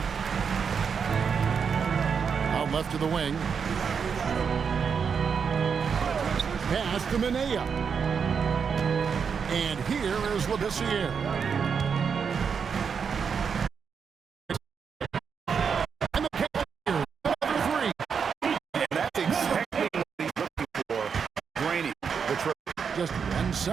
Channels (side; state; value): left; quieter; 6.4 dB